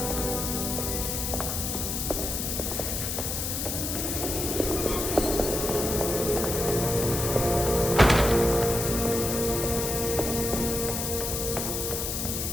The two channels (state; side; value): noise; left; hiss, 2 dB below the sound